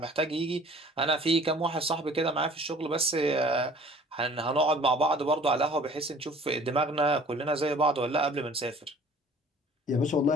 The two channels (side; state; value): both; normal; correlation 0.50